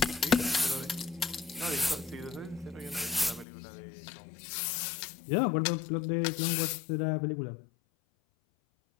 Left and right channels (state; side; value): drops out; right; at 3.5 s